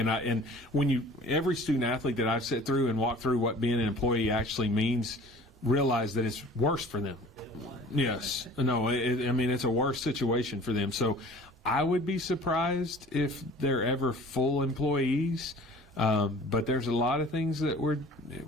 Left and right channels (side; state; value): both; normal; correlation 0.47